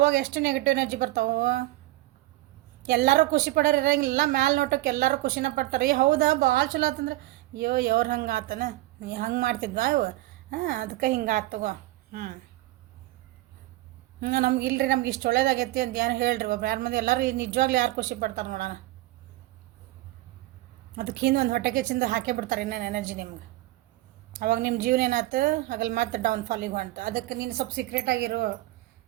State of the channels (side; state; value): left; quieter; 17.4 dB